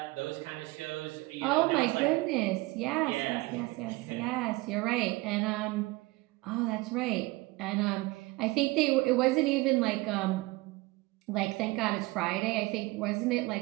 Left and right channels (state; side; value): quieter; left; 22.1 dB